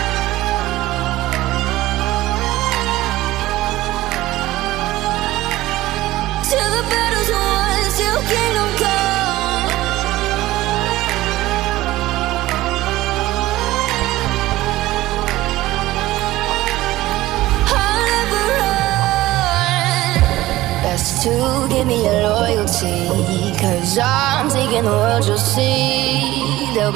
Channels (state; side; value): quieter; left; 16.9 dB